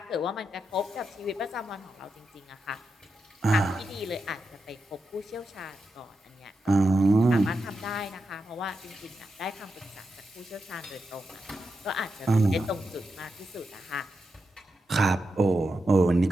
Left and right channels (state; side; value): normal; both; correlation 0.87